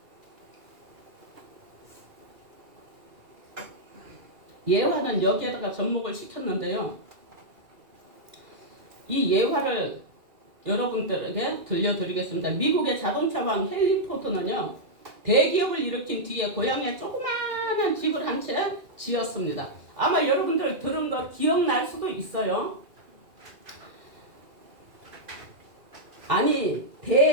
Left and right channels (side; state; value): left; late; 2.4 ms